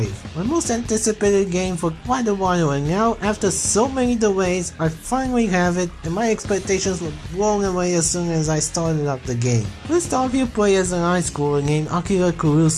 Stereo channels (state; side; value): identical; both; correlation 1.00